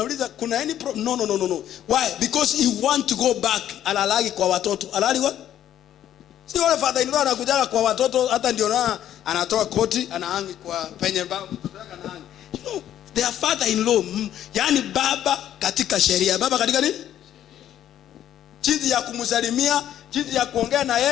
kuna any problem? No. Why? Because he want to go back. Alalagi kwa watoto. Alali what? Si wale father-in-law anakujaga kwa watoto hata ndio na anatoa koti anahangi kwa penye baba mtoto yake anahangi. You know, their father-in-law, yani baba katika sheria. Baba katika nini? Jinsi ya kumsalimia, jinsi ya kuongea na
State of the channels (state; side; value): quieter; right; 11.3 dB